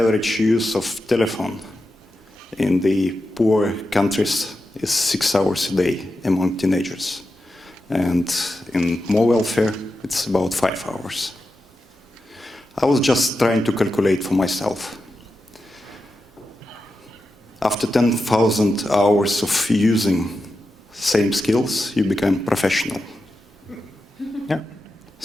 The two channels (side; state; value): both; normal; correlation 0.90